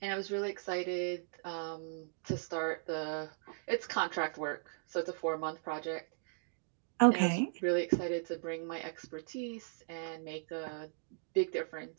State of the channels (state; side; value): silent; left; digital silence